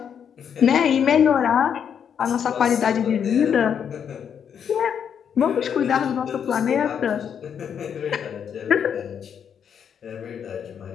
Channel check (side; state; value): right; quieter; 7.9 dB